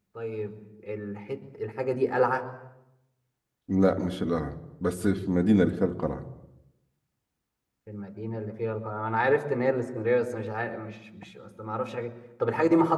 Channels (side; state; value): both; identical; correlation 1.00